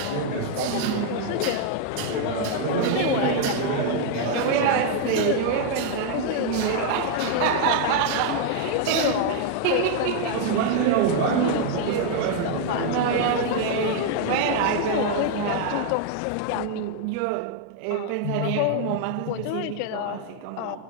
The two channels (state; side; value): different; both; correlation 0.00